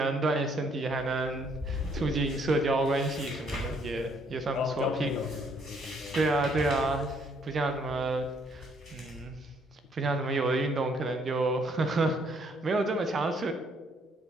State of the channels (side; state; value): both; normal; correlation 0.67